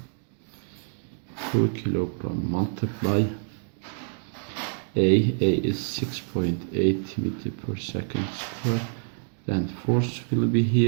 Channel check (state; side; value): silent; left; 60 dB below the other